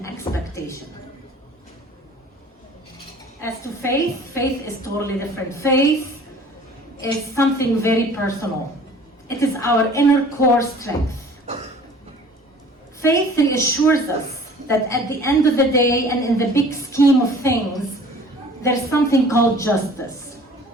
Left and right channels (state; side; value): normal; both; correlation 0.49